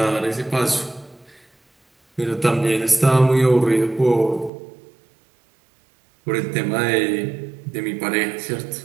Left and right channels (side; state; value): left; drops out; at 4.5 s